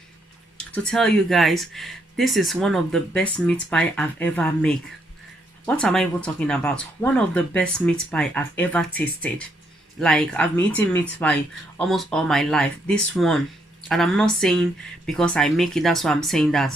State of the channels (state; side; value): normal; both; correlation 0.75